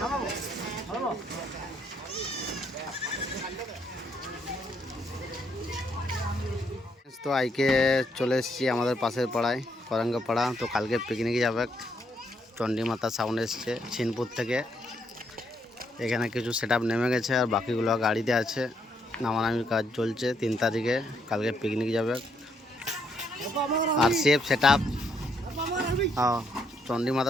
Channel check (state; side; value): normal; both; correlation 0.74